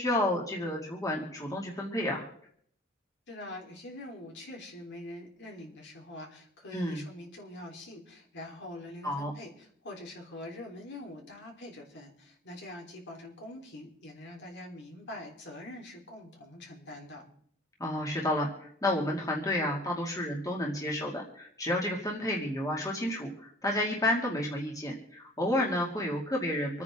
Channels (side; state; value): both; normal; correlation 0.48